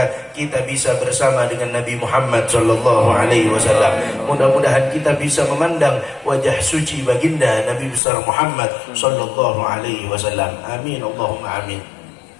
kita bisa bersama dengan Nabi Muhammad sallallahu alaihi wasallam. Mudah-mudahan kita bisa memandang wajah suci baginda Nabi besar Muhammad sallallahu alaihi wasallam. Amin Allahumma amin.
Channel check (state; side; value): drops out; right; at 8.0 s